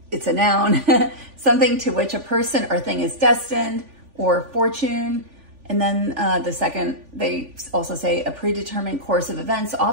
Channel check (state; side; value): late; left; 3.5 ms